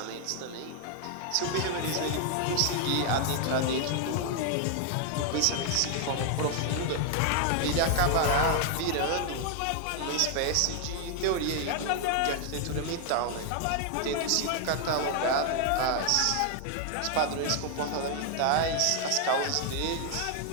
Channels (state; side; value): different; both; correlation 0.00